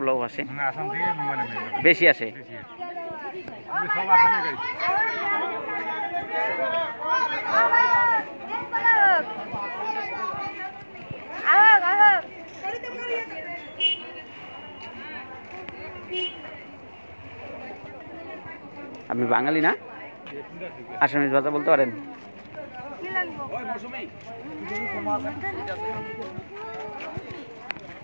লোক আসে, আসাম থেকে মানে বেশি আসে। সব আসামে গাড়ি। আপনি বাঙালি না? আসামিজ ভাষা বলতে পারেন?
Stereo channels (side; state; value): both; inverted; correlation -1.00